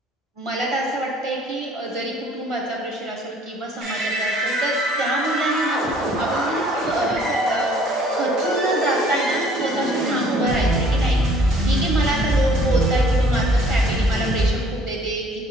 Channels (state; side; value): normal; both; correlation 0.57